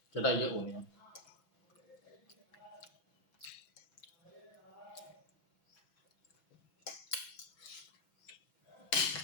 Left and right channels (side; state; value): right; late; 6.0 ms